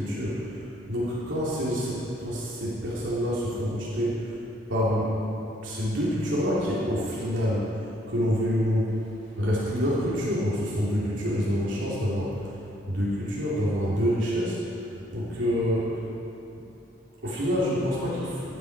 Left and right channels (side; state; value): both; normal; correlation 0.67